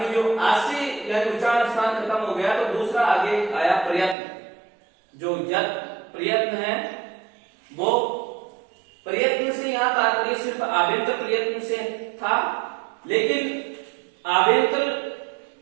जो आस्य यानी उच्चारण स्थान खत्म हो गया, तो दूसरा आगे आया प्रयत्न। जो प्रयत्न है वो प्रयत्न से यहाँ तात्पर्य सिर्फ आभ्यंतर प्रयत्न से था, लेकिन आभ्यंतर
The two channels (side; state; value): left; drops out; at 4.2 s